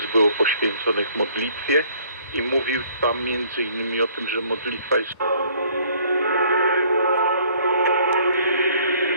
było poświęconych modlitwie i mówił tam między innymi o tym, że modlitwa jest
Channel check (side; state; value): both; inverted; correlation -0.59